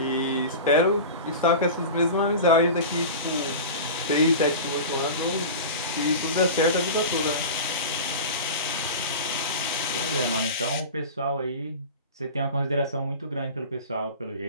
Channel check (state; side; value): inverted; both; correlation -0.31